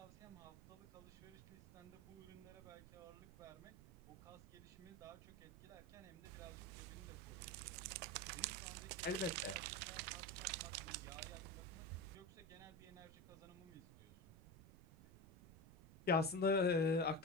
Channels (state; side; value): noise; right; rumble, 17 dB below the sound